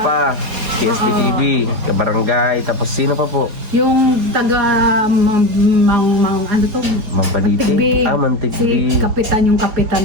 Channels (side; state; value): left; late; 4.8 ms